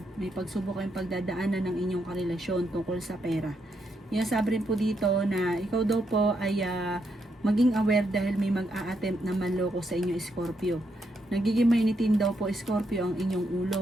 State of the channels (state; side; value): normal; both; correlation 0.79